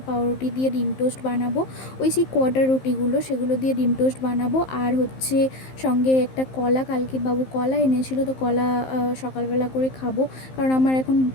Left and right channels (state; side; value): late; right; 15 ms